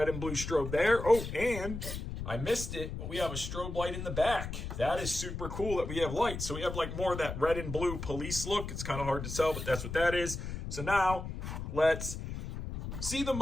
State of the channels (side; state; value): left; noise; rumble, 6 dB below the sound